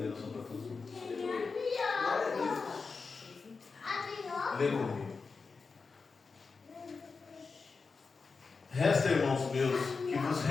para todos nós. Lê comigo. Resta, irmãos meus, que vos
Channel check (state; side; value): quieter; right; 4.7 dB